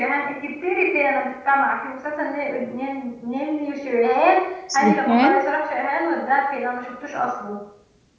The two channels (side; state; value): both; identical; correlation 1.00